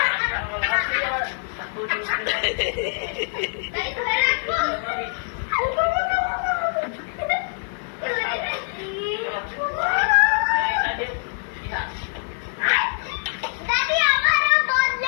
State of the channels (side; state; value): right; silent; 63 dB below the other